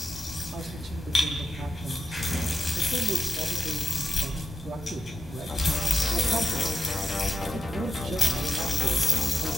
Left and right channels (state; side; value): normal; both; correlation 0.87